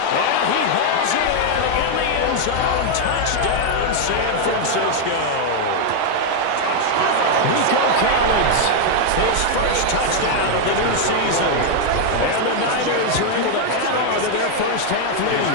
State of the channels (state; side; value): different; both; correlation 0.00